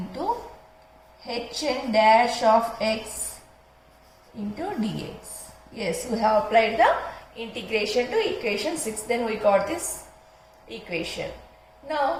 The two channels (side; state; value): both; identical; correlation 1.00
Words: hn dash of x into dx. Yes, we have applied the integration to equation 6. Then we got this equation.